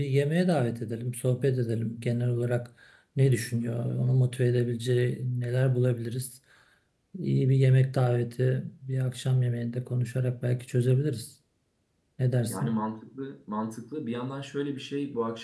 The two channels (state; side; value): identical; both; correlation 1.00